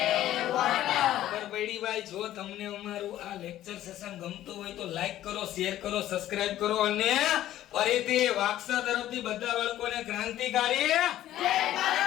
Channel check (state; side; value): quieter; right; 13.2 dB